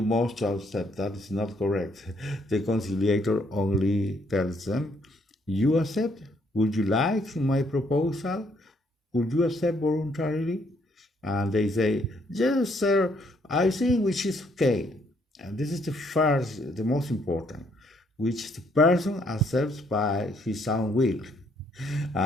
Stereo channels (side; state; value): both; normal; correlation 0.69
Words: must accept. That is not correct. The conciliator only tells them, you accept? Would you like my proposal? Would you accept voluntarily? And they say, yes, sir, I think which is okay. And this is the most important, which the person accepts by his own will.